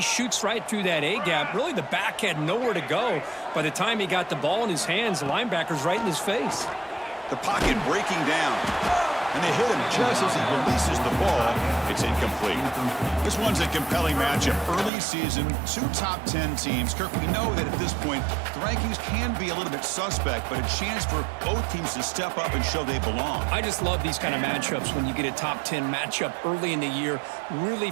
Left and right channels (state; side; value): drops out; left; at 14.9 s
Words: shoots right through that A-gap. Really, the back had nowhere to go. By the time he got the ball in his hands, the linebacker's right in his face. The pocket breaking down. And they hit him just as he releases the ball. It's incomplete. This one's a compelling matchup. Early season, two top 10 teams. Kirk, we know that at this point, the rankings can be a little bit suspect, but a chance for both teams to step up and show they belong. I just love these kind of matchups when you get a top 10 matchup early in the year. Really